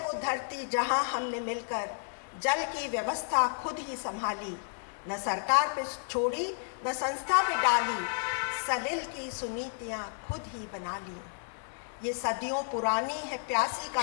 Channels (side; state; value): right; silent; 57 dB below the other